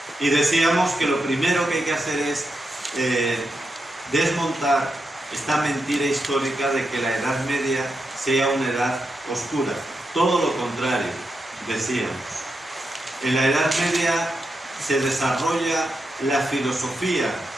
Y decíamos que lo primero que hay que hacer es desmontar esta mentira histórica de que la Edad Media sea una edad oscura. Todo lo contrario, decíamos. En la Edad Media se desarrolla la filosofía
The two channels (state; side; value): normal; both; correlation 0.86